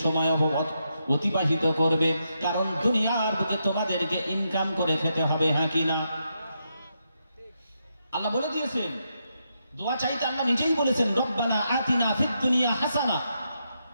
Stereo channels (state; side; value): inverted; both; correlation -0.82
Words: সময় অতিবাহিত করবে, কারণ দুনিয়ার বুকে তোমাদেরকে ইনকাম করে খেতে হবে, হ্যাঁ কি না? আল্লাহ বলে দিয়েছেন। দোয়া চাইতে আল্লাহ নিজেই বলেছেন, রব্বানা আতিনা ফিদ দুনিয়া হাসানা।